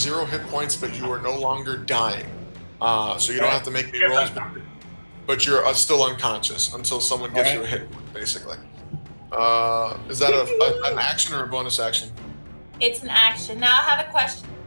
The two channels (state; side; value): inverted; both; correlation -1.00